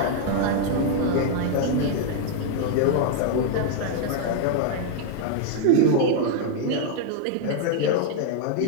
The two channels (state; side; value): different; both; correlation 0.00